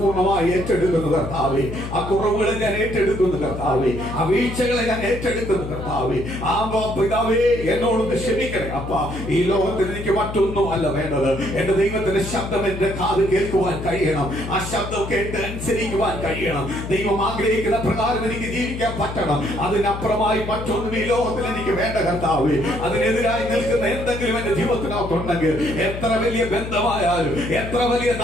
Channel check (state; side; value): noise; left; hum, 8 dB below the sound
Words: ഏറ്റെടുക്കുന്നു കർത്താവേ. ആ കുറവുകളെ ഞാൻ ഏറ്റെടുക്കുന്നു കർത്താവേ. ആ വീഴ്ചകളെ ഞാൻ ഏറ്റെടുക്കുന്നു കർത്താവേ. ആ പിതാവേ, എന്നോടൊന്ന് ക്ഷമിക്കണേ അപ്പാ. ഈ ലോകത്തിൽ എനിക്ക് മറ്റൊന്നും അല്ല വേണ്ടത്. എന്റെ ദൈവത്തിന്റെ ശബ്ദം എന്റെ കാത് കേൾക്കുവാൻ കഴിയണം. ആ ശബ്ദം കേട്ട് അനുസരിക്കുവാൻ കഴിയണം. ദൈവം ആഗ്രഹിക്കുന്ന പ്രകാരം എനിക്ക് ജീവിക്കാൻ പറ്റണം. അതിനപ്പുറമായി മറ്റൊന്നും ഈ ലോകത്തിൽ എനിക്ക് വേണ്ട കർത്താവേ. അതിനെതിരായി നിൽക്കുന്ന എന്തെങ്കിലും എന്റെ ജീവിതത്തിനകത്തുണ്ടെങ്കിൽ, എത്ര വലിയ ബന്ധമായാലും, എത്ര വലിയ